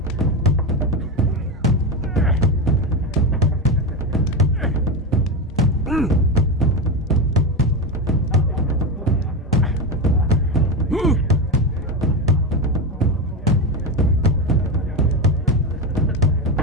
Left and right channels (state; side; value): normal; both; correlation 0.17